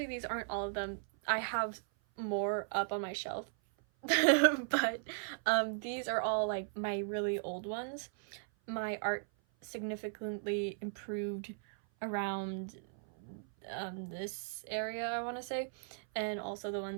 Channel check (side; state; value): left; silent; 53 dB below the other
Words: these aren't all of them. I have more up on my shelf, but these are all like my really old ones. My art significantly improved around this area, I want to say, and also the